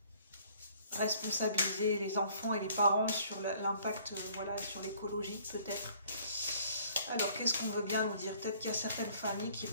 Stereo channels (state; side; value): inverted; both; correlation -0.58